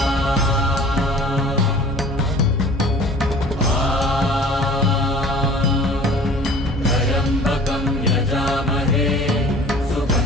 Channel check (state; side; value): normal; both; correlation 0.47